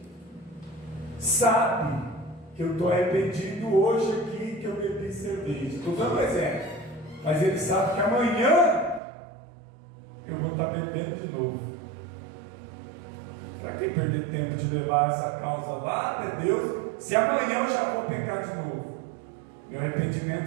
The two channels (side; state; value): left; drops out; at 9.0 s